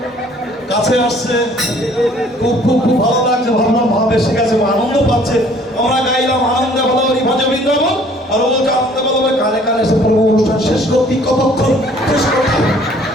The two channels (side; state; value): both; normal; correlation 0.56